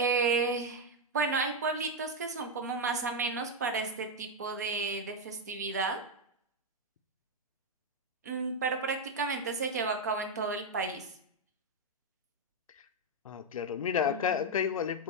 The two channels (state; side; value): normal; both; correlation 0.02